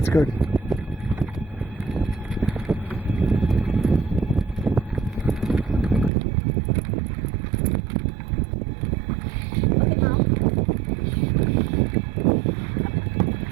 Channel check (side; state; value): left; drops out; at 6.1 s